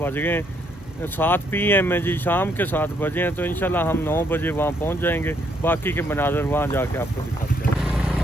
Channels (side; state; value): both; normal; correlation 0.71